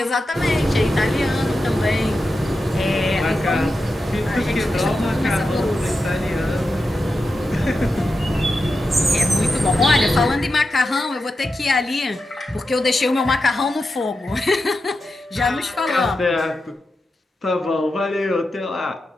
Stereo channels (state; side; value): normal; both; correlation 0.90